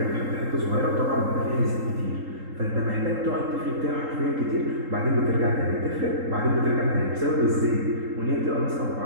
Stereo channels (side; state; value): left; late; 3.8 ms